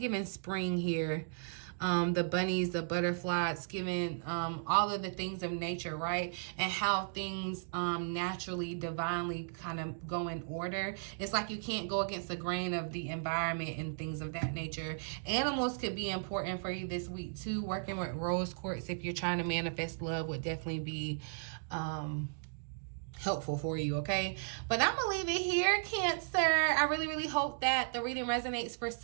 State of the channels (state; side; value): silent; left; digital silence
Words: spring here. The bunnies, the butterflies, giving all of the things of nature, right? And how things naturally, divinely kind of go in order. It's like you can't go against the grain of the environment and things of that nature. Animals could be important for you this week too. Working with rose quartz if you're trying to manifest love would definitely be helpful for you, okay? But I'm gonna leave it here, Cancer. I really hope that the reading resonates for